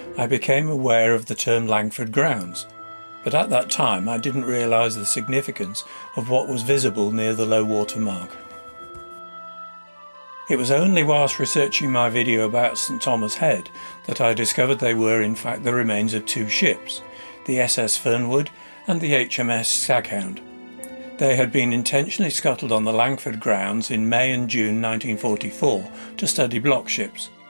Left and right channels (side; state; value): both; inverted; correlation -1.00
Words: I became aware of the term Langford Grounds, but at that time I didn't realise the significance of what was visible near the low water mark. It was only whilst researching my video about St Thomas Head that I discovered they were in fact the remains of two ships, the SS Fernwood and the HMS Staghound. They had been intentionally scuttled on the Langford Grounds in May and June 1944 to study block ships.